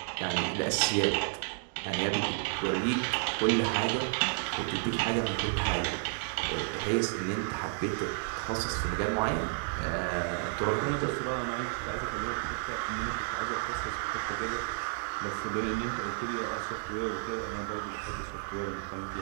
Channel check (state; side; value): silent; left; 57 dB below the other